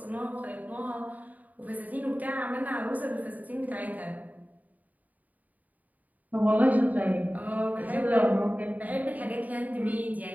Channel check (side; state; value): left; late; 0.076 ms